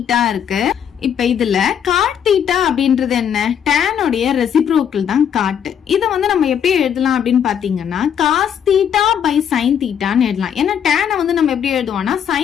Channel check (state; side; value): quieter; right; 8.5 dB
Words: இருக்கு. இப்ப இதுல காட் தீட்டா அப்படின்றது என்ன, tan உடைய ரெசிப்ரோக்கல் தான் காட். இத வந்து நம்ம எப்படி எழுதலாம் அப்படின்னு பாத்தீங்கன்னா காஸ் தீட்டா பை சைன் தீட்டான்னு எழுதலாம். ஏன்னா tan வந்து நம்ம எப்படி எழுதுவோம்னா